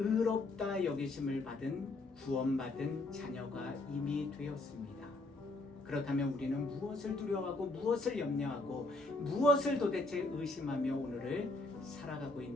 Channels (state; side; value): quieter; right; 3.1 dB